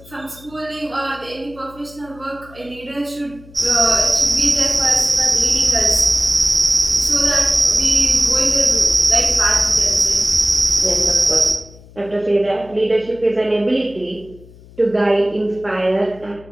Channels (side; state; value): left; noise; hum, 22 dB below the sound